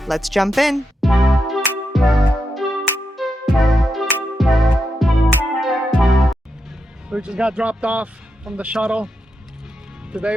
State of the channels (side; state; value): both; normal; correlation 0.85